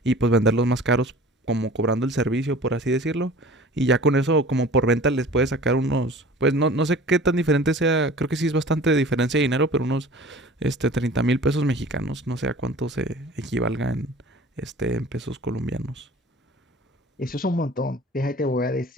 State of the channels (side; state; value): both; normal; correlation 0.43